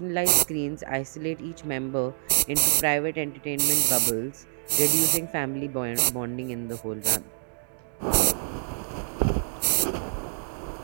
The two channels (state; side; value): silent; left; digital silence